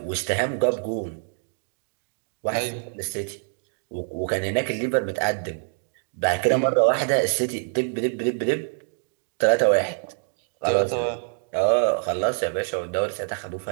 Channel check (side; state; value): left; silent; digital silence